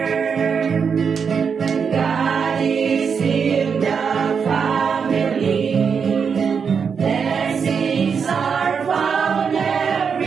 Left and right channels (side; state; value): left; quieter; 6.3 dB